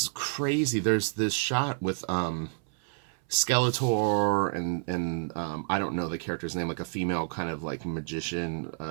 crazy. There's this shot with Skeletor and I don't know the character's name, like a female kind of like magician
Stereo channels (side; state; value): left; silent; 58 dB below the other